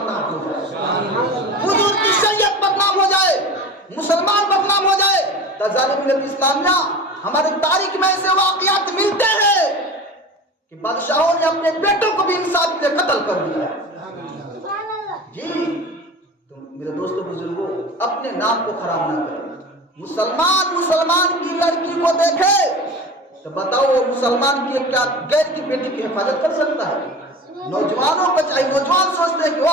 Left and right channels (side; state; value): both; normal; correlation 0.34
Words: ہو جائے، حضور کی شریعت بدنام ہو جائے، مسلمان بدنام ہو جائے۔ ظالم ملت اسلامیہ ہماری تاریخ میں ایسے واقعات ملتے ہیں کہ بادشاہوں نے اپنے بیٹوں کو بھی انصاف کے لیے قتل کر دیا ہے۔ جی تو میرے دوستوں بزرگوں اپنے نام کو خراب نہ کریں۔ مسلمان کی لڑکی کو دیکھے تو بتاؤ وہ مسلمان کی کیا غیر کی بیٹی کی حفاظت کر سکتا ہے؟ نوجوانوں کو چاہیے، نوجوان سوچتے ہیں کہ